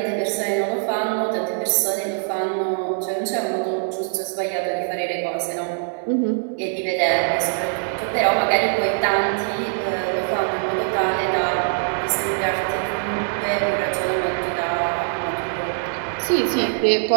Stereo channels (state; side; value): silent; left; 60 dB below the other